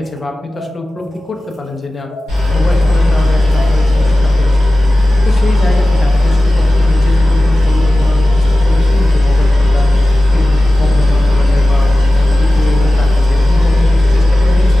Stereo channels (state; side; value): normal; both; correlation 0.95